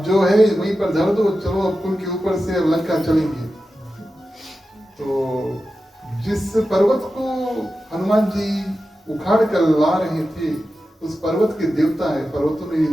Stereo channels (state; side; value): normal; both; correlation 0.92